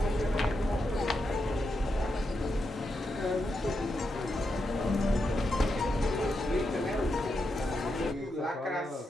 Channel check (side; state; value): both; normal; correlation 0.85